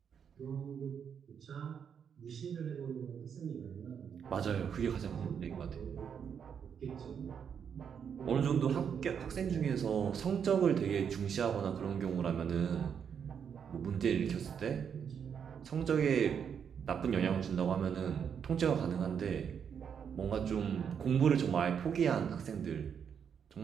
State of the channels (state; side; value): quieter; left; 7.5 dB